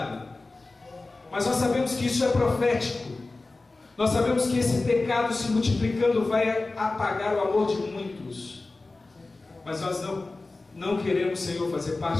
Mas nós sabemos que isso é profético. Nós sabemos que esse pecado se multiplicando vai apagar o amor de muitos. Mas nós não queremos, Senhor, fazer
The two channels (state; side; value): quieter; right; 3.3 dB